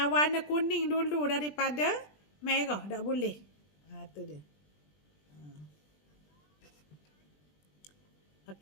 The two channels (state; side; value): late; right; 20 ms